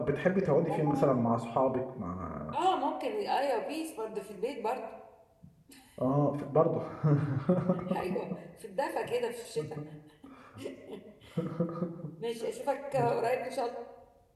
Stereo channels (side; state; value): both; identical; correlation 1.00